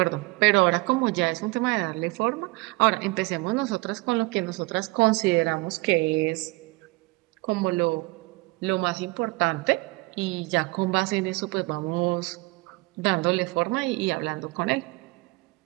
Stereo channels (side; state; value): left; quieter; 24.1 dB